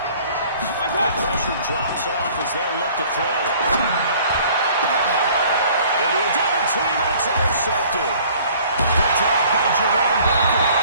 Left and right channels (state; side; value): inverted; both; correlation -0.54